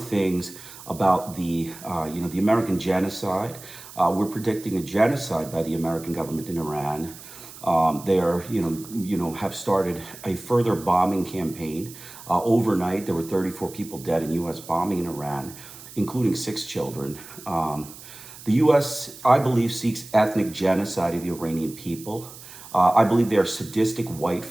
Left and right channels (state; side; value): noise; right; hiss, 17 dB below the sound